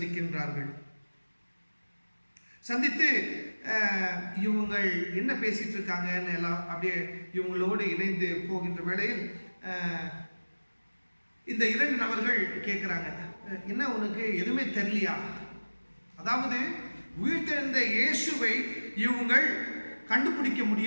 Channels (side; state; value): both; inverted; correlation -1.00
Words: சந்தித்து இவங்கள் என்ன பேசிட்டு இருக்காங்கன்னு எல்லாம் அப்படியே இவங்களோடு இணைந்து போகின்ற வேளையில் இந்த 2 நபர்கள் கேட்குறாங்க, என்ன உனக்கு எதுவுமே தெரியலையா? அதாவது உயிர்த்தெழுந்த இயேசுவை இவங்கள் கண்டுபிடிக்க